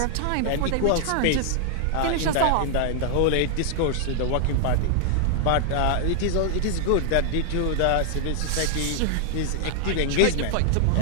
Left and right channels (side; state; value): both; different; correlation 0.00